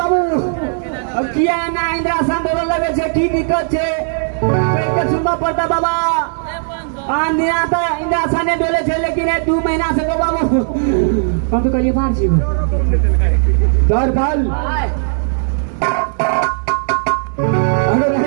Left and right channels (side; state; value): left; silent; digital silence